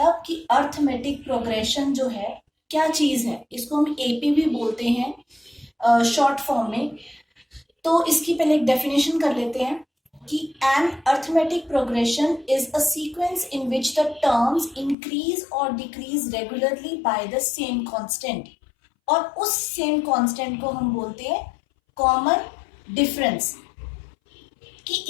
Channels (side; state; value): right; drops out; at 15.0 s